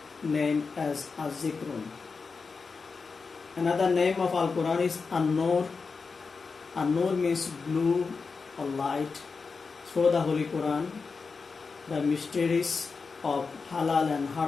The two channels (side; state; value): right; quieter; 4.8 dB